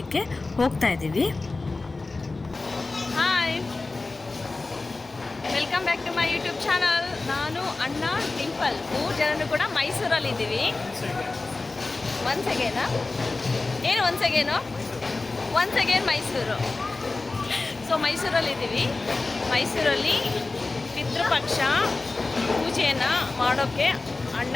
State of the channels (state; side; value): quieter; right; 3.5 dB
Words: ಹೋಗ್ತಾ ಇದ್ದೀವಿ. Hi, welcome back to my YouTube channel. ನಾನು ಅಣ್ಣ ಡಿಂಪಲ್ 3 ಜನರು ಕೂಡ ಮೈಸೂರಲ್ಲಿದ್ದೀವಿ. Once again Mysuru. ಸೊ ಮೈಸೂರಲ್ಲಿದ್ದೀವಿ. ಮೈಸೂರಲ್ಲಿ ಪಿತೃಪಕ್ಷ ಪೂಜೆಯನ್ನು ಮಾಡೋಕ್ಕೆ ಅಣ್ಣ